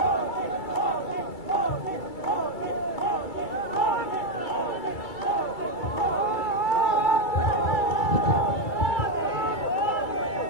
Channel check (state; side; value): late; right; 2.3 ms